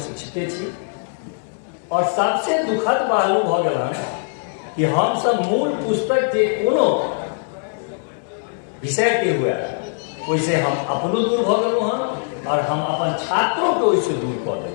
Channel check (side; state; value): right; silent; digital silence